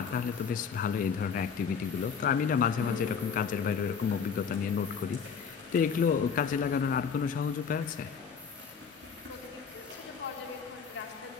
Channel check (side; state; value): right; quieter; 6.4 dB